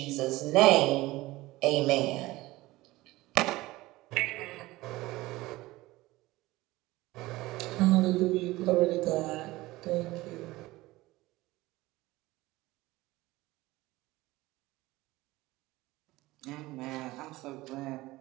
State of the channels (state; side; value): quieter; left; 19.0 dB